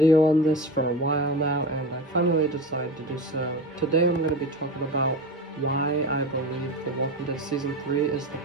on this for a while now, and I finally decided to do so. Today I'm going to be talking about why I believe The Walking Dead Season 3 is the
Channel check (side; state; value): both; normal; correlation 0.26